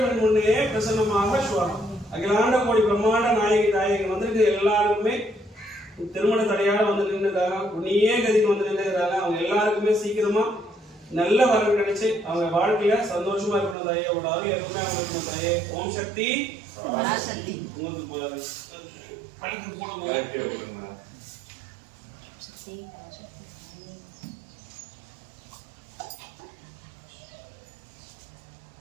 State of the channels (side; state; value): left; drops out; at 13.8 s